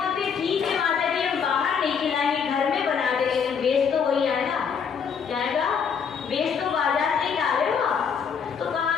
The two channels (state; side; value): quieter; right; 6.6 dB